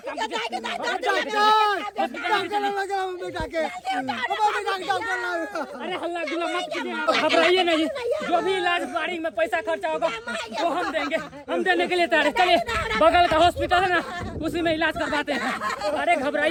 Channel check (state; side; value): identical; both; correlation 1.00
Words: कीजिए। डॉक्टर लगा बेटा के हमारे बेटा के डॉक्टर लगा अरे हल्ला गुल्ला मत कीजिए आप घबराइए नहीं जो भी इलाज गाड़ी में पैसा खर्चा होगा वो हम देंगे हम देने के लिए तैयार हैं। चलिए बगल का हॉस्पिटल है ना उसी में इलाज करवाते हैं। अरे